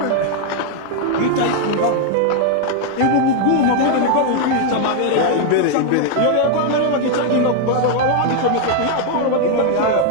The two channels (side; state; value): both; different; correlation 0.00